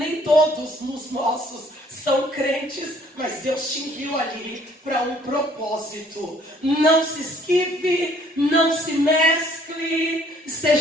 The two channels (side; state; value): both; normal; correlation 0.60